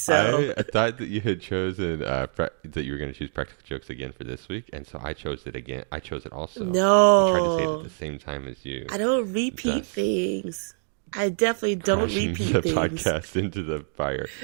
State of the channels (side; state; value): left; silent; digital silence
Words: I thought that you had chosen that you were going to choose practical jokes again for this week, and so I chose it again. I chose it also. No. I tried to say it at the same time as you. I don't repeat things. I definitely don't repeat the things. podcast into the fire.